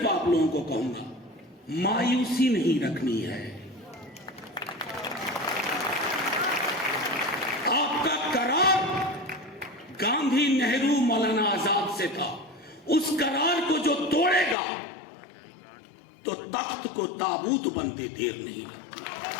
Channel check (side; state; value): right; drops out; at 14.6 s